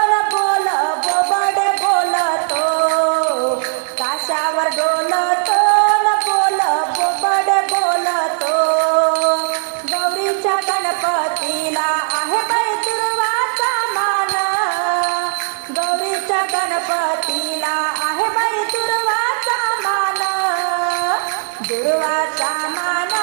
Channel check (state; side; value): silent; left; 63 dB below the other